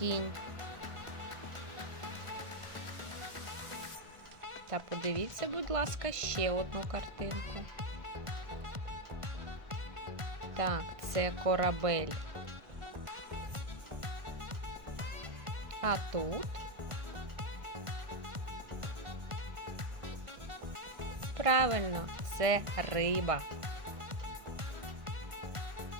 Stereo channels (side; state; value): left; late; 1.4 ms